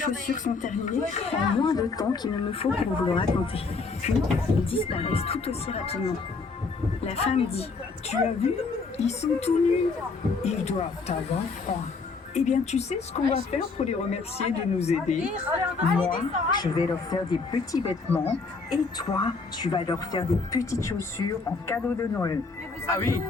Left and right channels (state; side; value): quieter; right; 4.3 dB